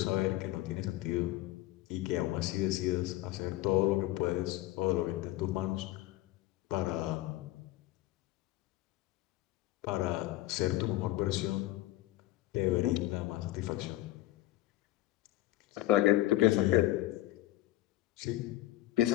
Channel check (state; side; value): quieter; right; 16.3 dB